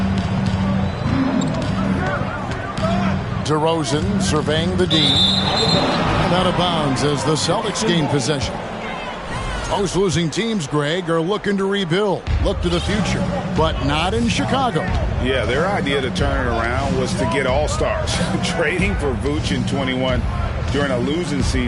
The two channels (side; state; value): both; identical; correlation 1.00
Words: DeRozan surveying the D. And out of bounds as the Celtics gain possession. Most losing teams, Greg, are looking to rebuild, look to the future, but not in Chicago. Yeah, their idea to turn it around was to get all-stars. Trading for Vooch in 21 during a losing